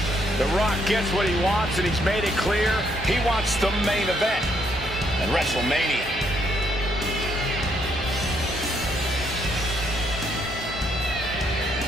The Rock gets what he wants, and he's made it clear he wants the main event at WrestleMania.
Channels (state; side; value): normal; both; correlation 0.72